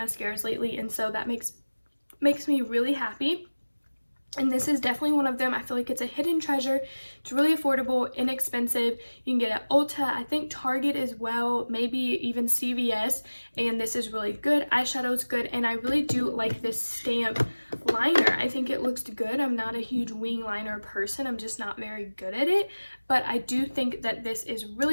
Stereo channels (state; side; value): inverted; both; correlation -1.00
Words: lately, and so that makes me really happy. And this is definitely one of them. I feel like it's a hidden treasure. It's really affordable, inexpensive. You can get it at Ulta, I think Target as well, maybe even CVS. And this is really good. Eyeshadow's good. And I really do like this stamp liner. I think it looks good. I'm not a huge wing liner person. I'm just not very good at it. But I do think that this is